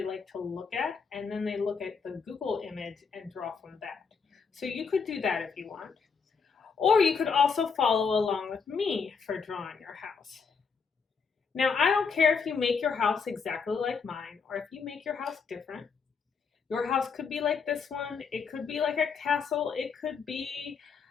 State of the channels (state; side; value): quieter; right; 5.6 dB